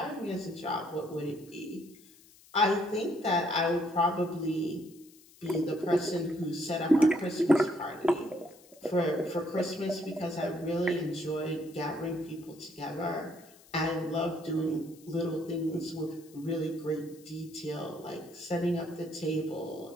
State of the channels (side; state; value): left; noise; hiss, 25 dB below the sound